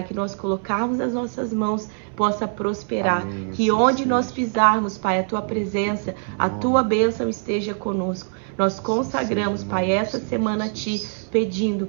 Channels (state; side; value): silent; left; 63 dB below the other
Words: que nós colocarmos nas nossas mãos possa prosperar. Amém, Que assim onde nós seja. pisarmos, Pai, a Tua presença, a Tua bênção esteja conosco. Nós consagramos, Pai, essa semana a Ti, pedindo,